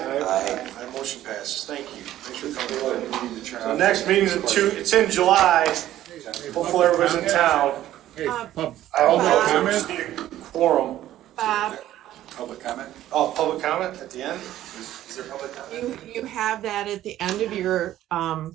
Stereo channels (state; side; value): quieter; left; 13.3 dB